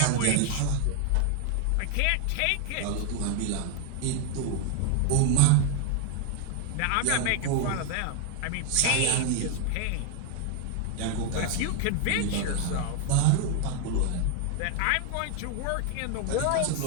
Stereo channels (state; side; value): different; both; correlation 0.01